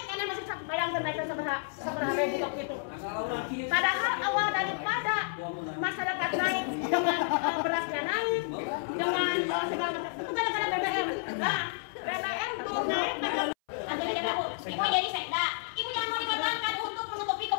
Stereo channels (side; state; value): right; silent; 57 dB below the other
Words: karena masih bayangkan naikkan seberapa ribu waktu itu padahal awal daripada masyarakat naik dengan berasnya naik dengan segala macam itu gara-gara BBM nah BBM belum naik ibu jadi sekda ibu jangan mau dikorbankan untuk menutupi